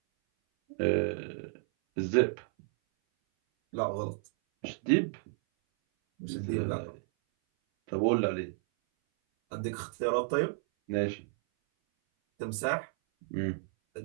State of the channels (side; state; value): left; silent; 57 dB below the other